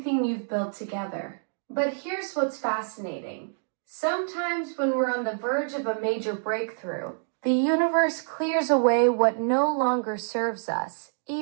you've built together. But here's what's fascinating. Sometimes when we're on the verge of a major breakthrough, the universe clears away what no longer serves us,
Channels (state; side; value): silent; left; digital silence